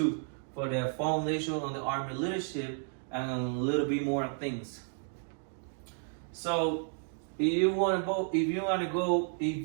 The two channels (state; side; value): silent; left; 56 dB below the other